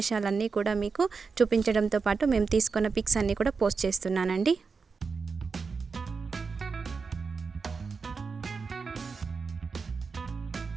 కూడా మీకు చూపించడంతో పాటు మేము తీసుకున్న పిక్స్ అన్నీ కూడా పోస్ట్ చేస్తున్నానండి.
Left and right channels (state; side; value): quieter; left; 5.0 dB